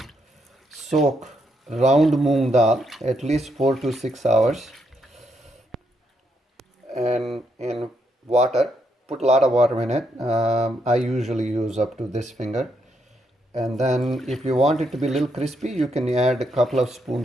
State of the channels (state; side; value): normal; both; correlation 0.77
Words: soak round moong dal at least 4 to 6 hours and in water. Put a lot of water in it. I usually use up to this finger. And then if you want it to be a little crispy, you can add a couple of